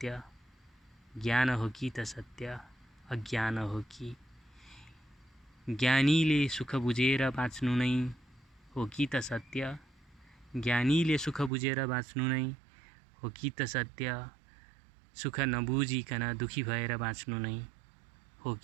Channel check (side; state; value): left; drops out; at 11.5 s